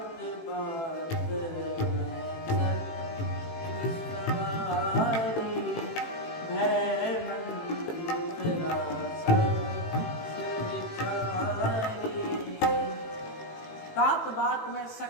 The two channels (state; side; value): late; right; 18 ms